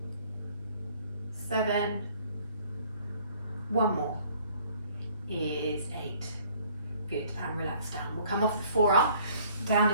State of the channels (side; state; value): both; inverted; correlation -0.58